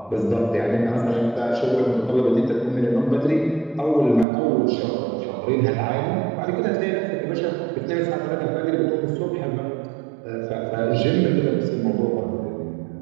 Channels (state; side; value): drops out; left; at 4.2 s